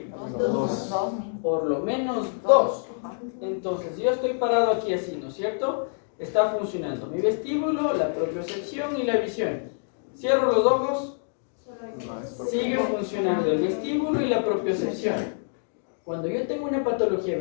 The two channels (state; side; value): silent; right; digital silence